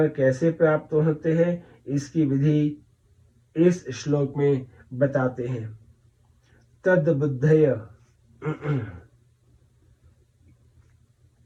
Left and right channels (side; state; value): both; identical; correlation 1.00